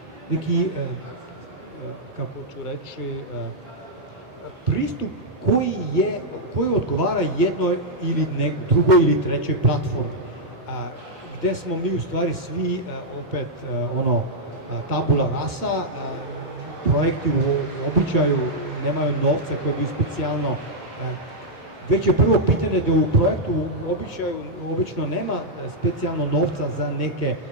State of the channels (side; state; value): both; normal; correlation -0.05